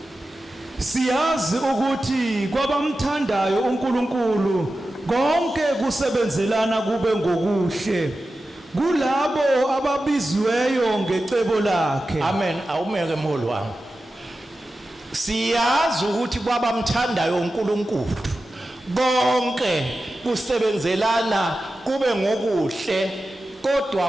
Siyazi ukuthi kwabamthandayo uNkulunkulu konke kusebenzelana kube ngokuhle kulabo ababizweyo ngecebo lakhe. Amen. Awumeke mholi wami. Siyazi ukuthi kwabamthandayo uNkulunkulu konke kusebenzelana kube ngokuhle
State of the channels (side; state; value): both; normal; correlation 0.93